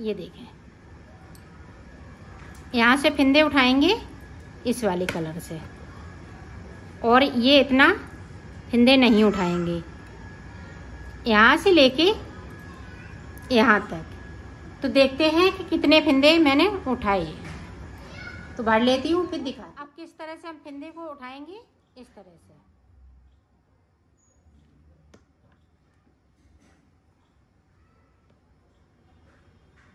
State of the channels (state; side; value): identical; both; correlation 1.00